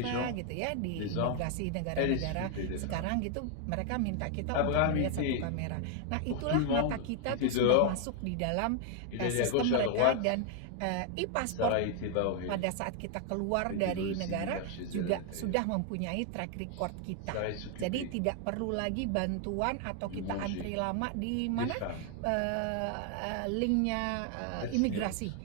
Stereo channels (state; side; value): different; both; correlation 0.00